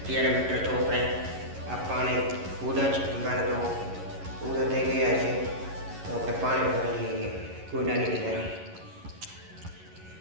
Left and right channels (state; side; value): late; left; 11 ms